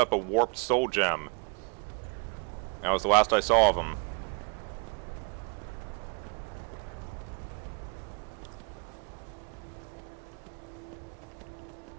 a warped soul gem. That was the last I saw of him.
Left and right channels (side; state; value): left; quieter; 37.0 dB